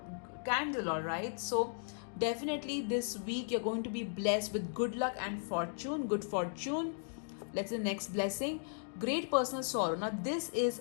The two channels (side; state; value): right; silent; digital silence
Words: candle. All right, so definitely this week you're going to be blessed with good luck and fortune. Good fortune. Let's see the next blessing. Great personal sorrow. Now this is